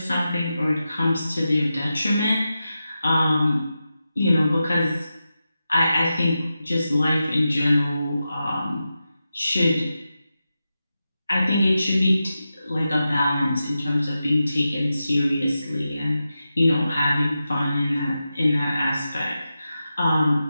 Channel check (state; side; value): inverted; both; correlation -0.91